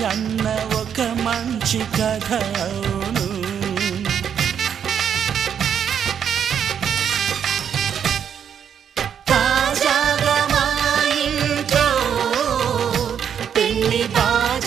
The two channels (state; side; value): quieter; left; 8.3 dB